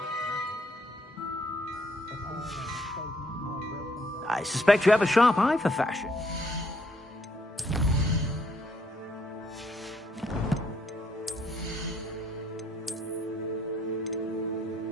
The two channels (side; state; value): both; normal; correlation 0.69